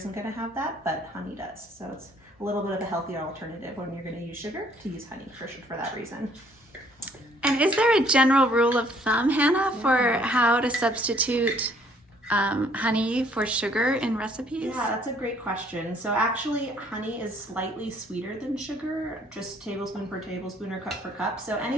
going to have that, but honey does. So it's a little bit of a healthier alternative when you're going to use sugar, to use honey for that reason. And is there a general rule of thumb, Hannah, for how to substitute honey for sugar in recipes? Yeah, that's a great question. So actually, honey is slightly sweeter than sugar, just tablespoon per tablespoon or cup per cup. So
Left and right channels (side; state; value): both; normal; correlation 0.62